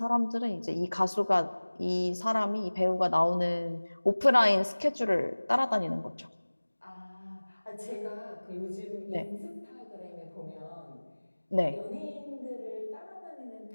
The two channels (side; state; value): both; inverted; correlation -1.00